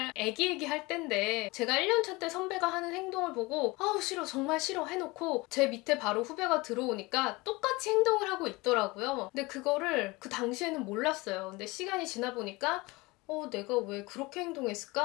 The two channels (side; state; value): right; quieter; 23.3 dB